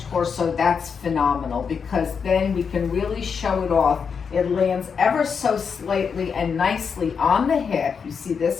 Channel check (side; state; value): right; quieter; 6.2 dB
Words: torso, that's phenomenal, because then we can really show it off. It lands ever so slightly and nicely on the hip. You see